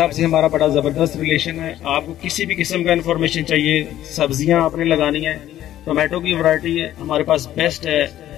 से हमारा बड़ा ज़बरदस्त रिलेशन है। आपको किसी भी किस्म का इन्फॉर्मेशन चाहिए, सब्जियाँ आपने लगानी है, टोमेटो की वैरायटी हमारे पास बेस्ट है।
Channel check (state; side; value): quieter; right; 12.7 dB